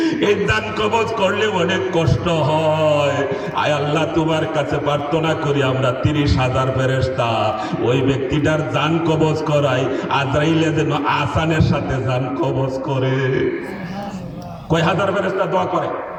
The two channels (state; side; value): identical; both; correlation 1.00